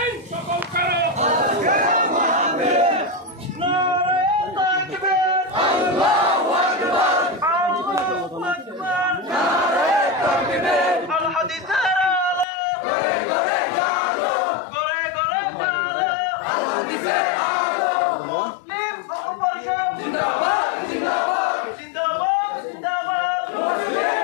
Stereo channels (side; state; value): right; drops out; at 12.5 s